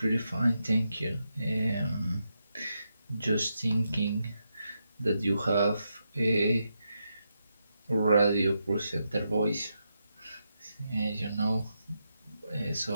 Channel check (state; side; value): inverted; both; correlation -0.85